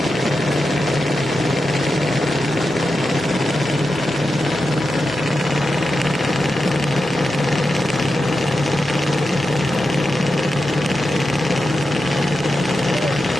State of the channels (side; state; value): both; normal; correlation 0.89